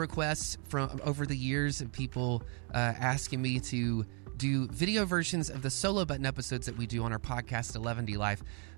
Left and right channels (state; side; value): quieter; left; 39.0 dB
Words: from over the years of people asking me to do video versions of the solo button episodes that we do on our podcast, Eleventylife,